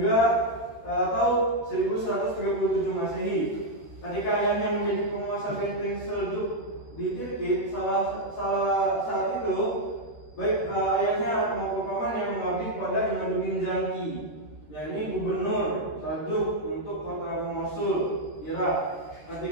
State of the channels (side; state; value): right; late; 13 ms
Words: atau 1137 Masehi. Ketika ayahnya menjadi penguasa benteng Seljuk di Tirkit, saat itu baik ayahnya atau pamannya mengabdi kepada Imaduddin Zanki, yakni gubernur Seljuk untuk kota Mosul, Irak.